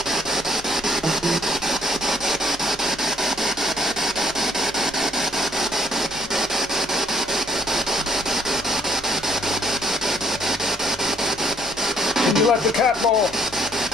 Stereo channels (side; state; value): both; normal; correlation 0.65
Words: Let the cat ball.